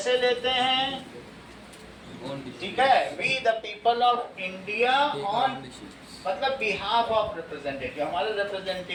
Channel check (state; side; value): identical; both; correlation 1.00